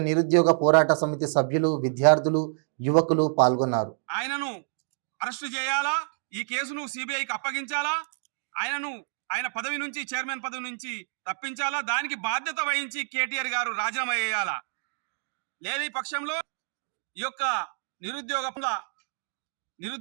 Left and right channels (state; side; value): silent; left; digital silence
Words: నిరుద్యోగ పోరాట సమితి సభ్యులు, విద్యార్థులు, యువకులు పాల్గొన్నారు. ఆయనను అరెస్టు చేయాలా, ఈ కేసును సిబిఐకి అప్పగించాలా, ఆయన పదవి నుంచి, చైర్మన్ పదవి నుంచి తప్పించాలా, దానికి బాధ్యత వహించి కేటీఆర్ గారు రాజీనామా చేయాలా. లేని పక్షంలో ఈ యొక్క